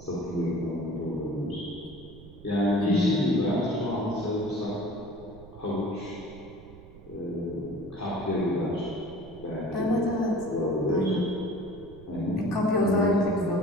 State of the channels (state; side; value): noise; right; rumble, 19 dB below the sound